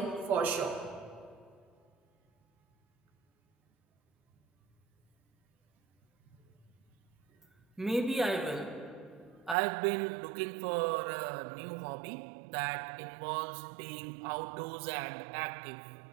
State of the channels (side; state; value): left; drops out; at 9.6 s